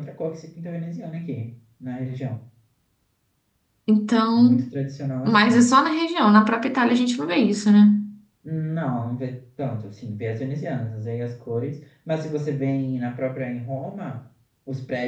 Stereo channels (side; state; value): both; identical; correlation 1.00